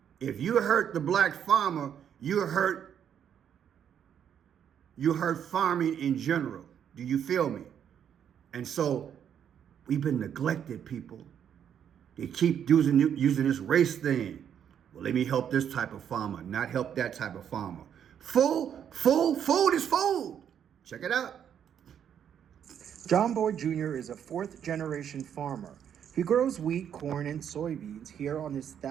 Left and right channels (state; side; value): quieter; left; 8.8 dB